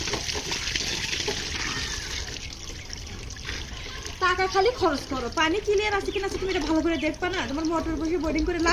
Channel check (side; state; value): both; identical; correlation 1.00